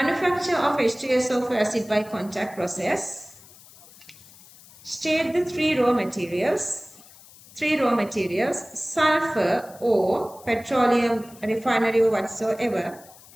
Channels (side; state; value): left; noise; hiss, 22 dB below the sound